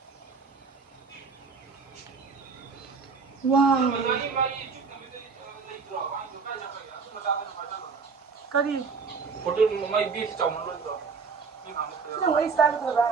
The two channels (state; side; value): quieter; left; 5.1 dB